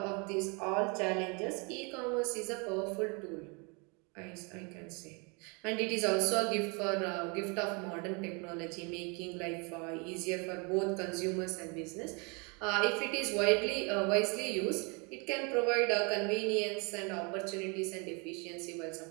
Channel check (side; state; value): left; quieter; 31.8 dB